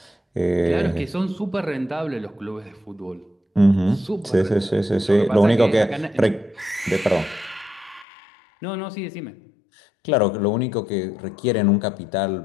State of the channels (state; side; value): drops out; right; at 8.1 s